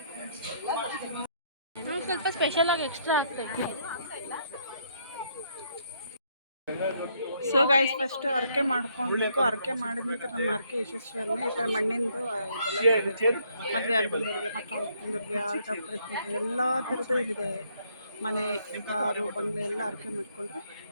ಸ್ವಲ್ಪ ಸ್ಪೆಷಲ್ ಆಗಿ ಎಕ್ಸ್ಟ್ರಾ ಆಗ್ತಾ ಇದೆ. ಸೊ ಗೈಸ್, ಫಸ್ಟ್ ಹರಕೆ ಮಾಡ್ಕೊಳ್ಬೇಕು. ಹರಕೆ ಮಾಡಿದ ನಂತರ ನಮ್ಮ ಹರಕೆ ಯಶಸ್ವಿಯನ್ನು ಈ ಥರ ಮಣ್ಣಿಂದು ಮದುವೆ ಆಗಿದ್ದವ್ರಿಗೆ, ಮಕ್ಕಳಿಗೆ, ಆಲ್ಟಪ್ರಿಗೆ ಎಲ್ಲ ಥರದ್ದು ಇಲ್ಲಿದೆ. ಮನೆ, ಕಾರು, ಬಂಗ್ಲೆ ಎಲ್ಲ ಹರಕೆ ಮಾಡಿಕೊಂಡ್ರೆ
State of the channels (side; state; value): both; inverted; correlation -0.70